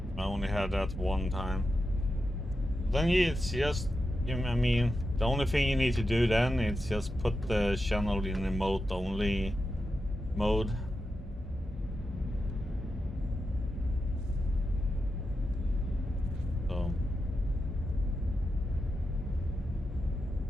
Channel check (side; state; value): both; normal; correlation 0.89